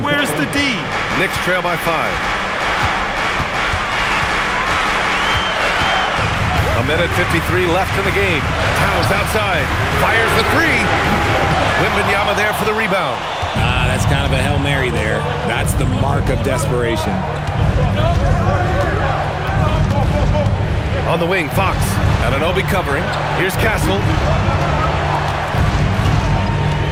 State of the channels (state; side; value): identical; both; correlation 1.00